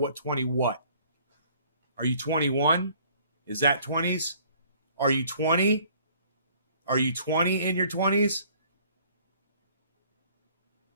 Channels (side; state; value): both; inverted; correlation -0.57